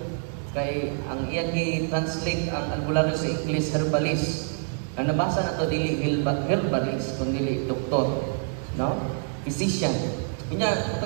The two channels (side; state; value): left; silent; 61 dB below the other